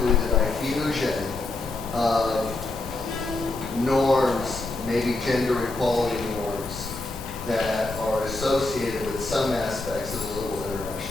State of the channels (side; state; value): right; quieter; 3.0 dB